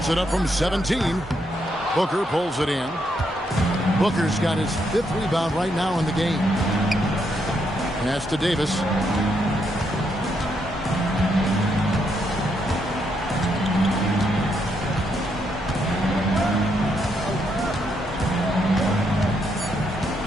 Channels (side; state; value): both; normal; correlation 0.77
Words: it up from 17. Booker pulls it in. Booker's got his 5th rebound right now in the game. Pass to Davis.